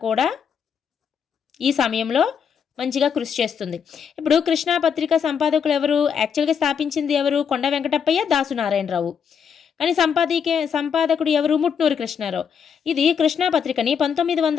కూడా ఈ సమయంలో మంచిగా కృషి చేస్తుంది. ఇప్పుడు కృష్ణా పత్రిక సంపాదకులు ఎవరు? యాక్చువల్గా స్థాపించింది ఎవరు? కొండా వెంకటప్పయ్య, దాసు నారాయణరావు. కానీ సంపాదకుడు ఎవరు? ముట్నూరు కృష్ణారావు. ఇది కృష్ణా పత్రికని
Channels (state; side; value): quieter; right; 7.1 dB